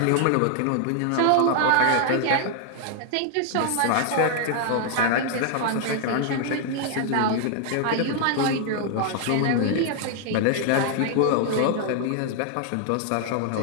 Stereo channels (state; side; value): different; both; correlation 0.00